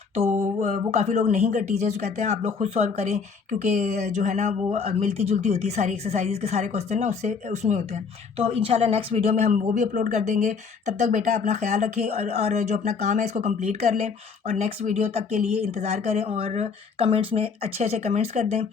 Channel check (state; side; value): quieter; right; 5.5 dB